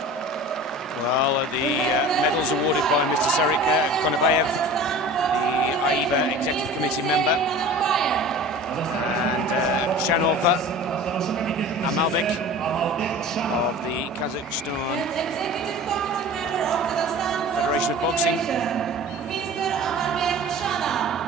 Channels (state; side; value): normal; both; correlation 0.39